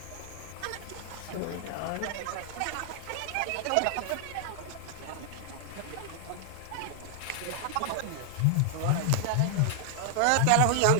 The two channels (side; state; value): both; different; correlation 0.00